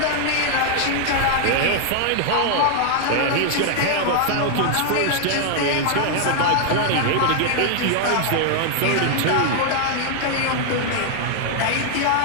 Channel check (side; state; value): both; different; correlation 0.00